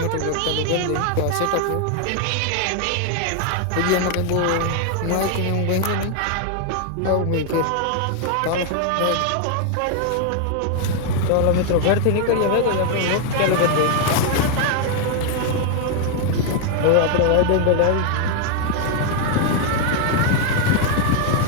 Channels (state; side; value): different; both; correlation 0.00